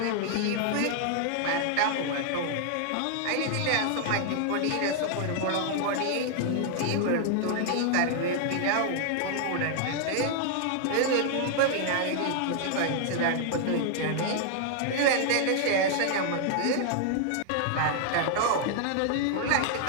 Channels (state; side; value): different; both; correlation 0.00